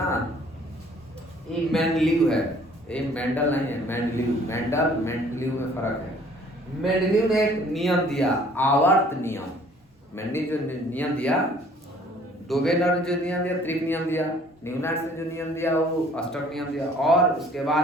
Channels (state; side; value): normal; both; correlation 0.56